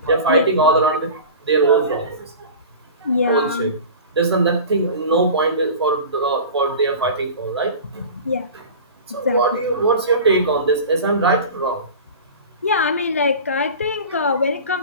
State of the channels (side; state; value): both; inverted; correlation -0.35